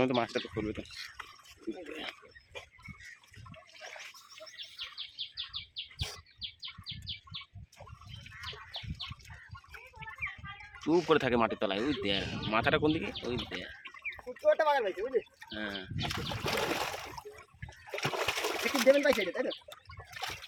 তো মাছটা তো করবে তো। চুপ করে থাকে মাটির তলায়, ওই দেখ মাথাটা কোন দিকে, ওই দেখ। হ্যাঁ দেবেন ভাই তাই তো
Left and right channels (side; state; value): both; identical; correlation 1.00